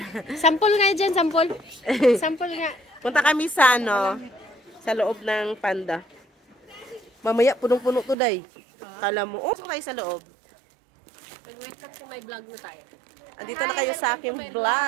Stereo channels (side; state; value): left; drops out; at 8.2 s